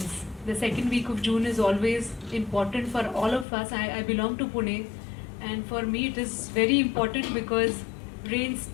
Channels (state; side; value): drops out; right; at 3.5 s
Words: The second week of June is always important for all of us. I belong to Pune, and for me it is very important because rains